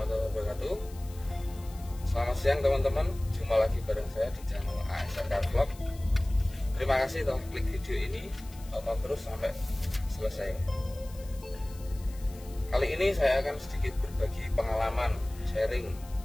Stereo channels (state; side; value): noise; left; hiss, 21 dB below the sound